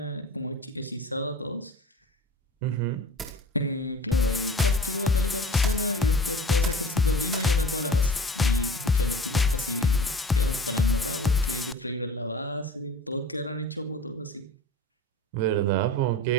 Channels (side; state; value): both; normal; correlation 0.40